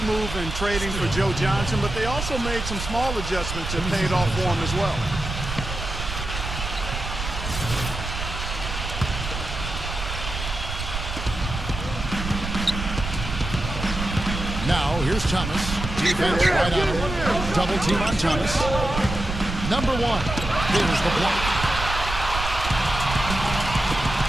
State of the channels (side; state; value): right; noise; rumble, 6 dB below the sound